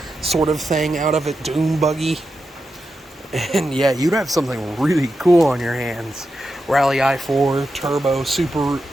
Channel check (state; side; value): normal; both; correlation 0.88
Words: sort of thing out of it, dune buggy. And yeah, you'd have something really cool on your hands. Rally i4 turbo Subaru